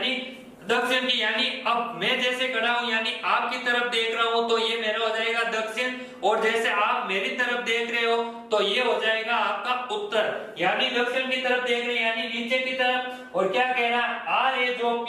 दक्षिण की। यानी अब मैं जैसे खड़ा हूं, यानी आपकी तरफ देख रहा हूं तो ये मेरा हो जाएगा दक्षिण, और जैसे आप मेरी तरफ देख रहे हो तो ये हो जाएगा आपका उत्तर। यानी दक्षिण की तरफ देख रहे हैं, यानी नीचे की तरफ। और क्या कह रहा है? R है जो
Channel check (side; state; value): both; identical; correlation 1.00